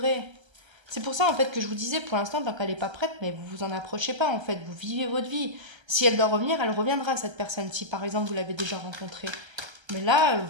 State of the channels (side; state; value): left; late; 1.3 ms